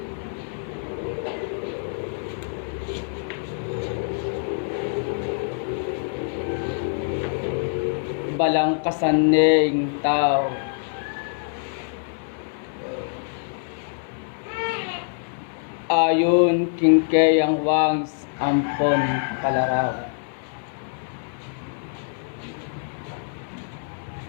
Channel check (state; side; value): silent; right; 62 dB below the other